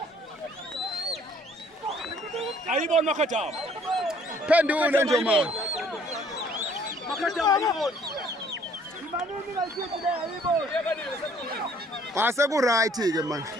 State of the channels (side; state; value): both; normal; correlation 0.60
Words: Ayibona Makhataba. Phendule nje manje. Makhataba ayibona. Ase ku right ke manje.